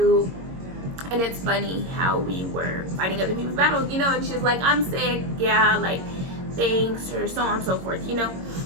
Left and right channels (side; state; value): left; late; 22 ms